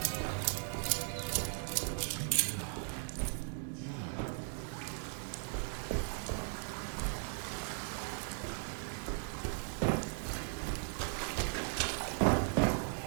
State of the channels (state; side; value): silent; left; 53 dB below the other